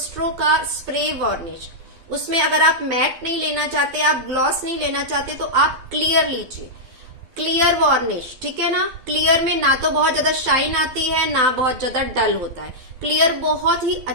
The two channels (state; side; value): late; left; 12 ms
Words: का स्प्रे वार्निश। उसमें अगर आप मैट नहीं लेना चाहते, आप ग्लॉस नहीं लेना चाहते, तो आप क्लियर लीजिए, क्लियर वार्निश, ठीक है ना। क्लियर में ना तो बहुत ज्यादा शाइन आती है, ना बहुत ज्यादा डल होता है। क्लियर बहुत ही